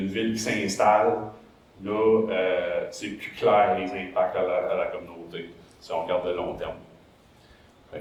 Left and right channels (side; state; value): both; identical; correlation 1.00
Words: ville qui s'installe, là, c'est plus clair les impacts à la communauté, si on regarde le long terme.